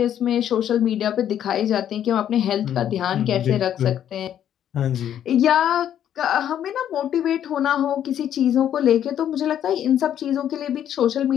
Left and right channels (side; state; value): right; quieter; 10.2 dB